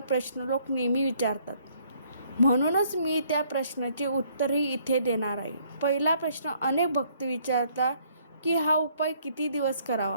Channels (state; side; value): inverted; both; correlation -0.65